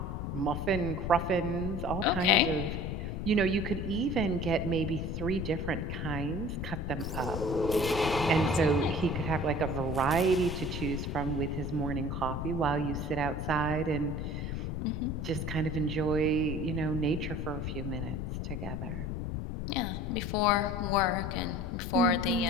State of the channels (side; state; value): left; noise; rumble, 4 dB below the sound